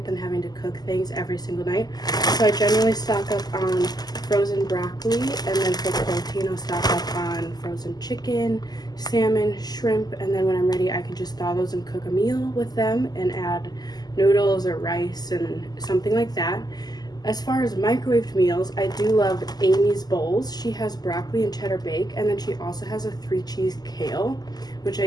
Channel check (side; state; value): right; late; 0.20 ms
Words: than having to cook things every single night. So I generally stock up on frozen broccoli, and then for protein I'll stock up on frozen chicken, salmon, shrimp, and then when I'm ready I can just thaw those and cook a meal with them and add noodles or rice and something like that. As far as microwaved meals, I do love Amy's Bowls. She has broccoli and cheddar bake, and then she also has a 3-cheese kale, which